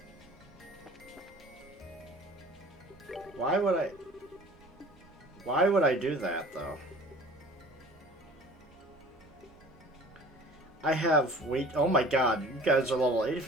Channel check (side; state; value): both; normal; correlation 0.46